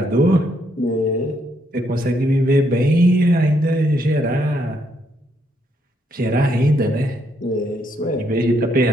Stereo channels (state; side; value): normal; both; correlation 0.74